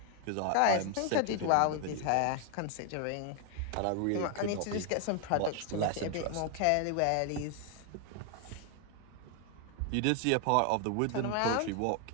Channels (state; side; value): different; both; correlation 0.01